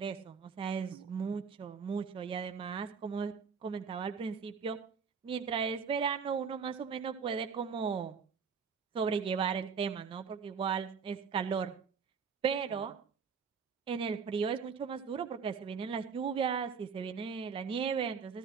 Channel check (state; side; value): quieter; left; 6.1 dB